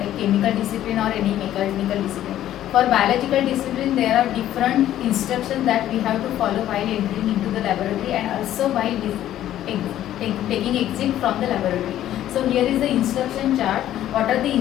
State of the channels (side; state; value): right; quieter; 12.4 dB